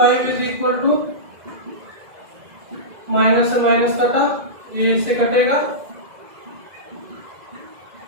इज इक्वल टू माइनस से माइनस कटा, ये इससे कटेगा,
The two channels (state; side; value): late; left; 2.0 ms